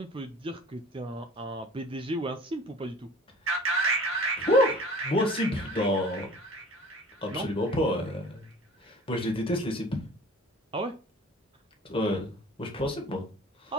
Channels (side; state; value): both; normal; correlation 0.45